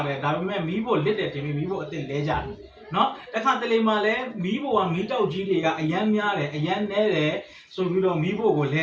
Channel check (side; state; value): both; identical; correlation 1.00